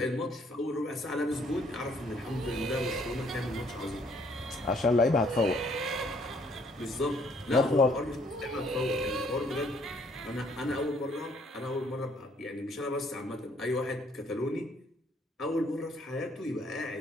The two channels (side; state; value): both; normal; correlation 0.64